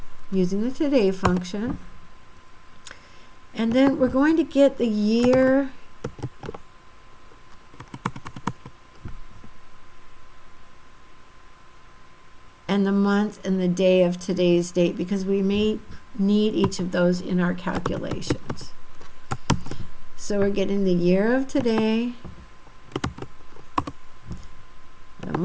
using the today function. And then we're going to get the year and the month and the day of today's date, because we may need each of those in our calculations. So we're getting the year of today, the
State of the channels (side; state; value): both; identical; correlation 1.00